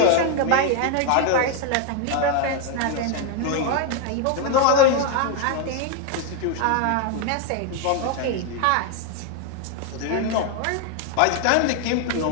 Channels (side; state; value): both; different; correlation 0.01